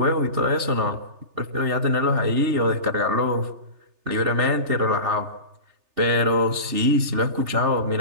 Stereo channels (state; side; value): late; left; 3.3 ms